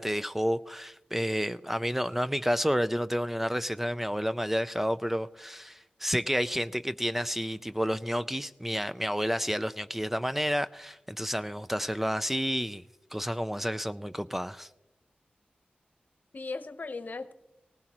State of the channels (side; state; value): both; normal; correlation 0.97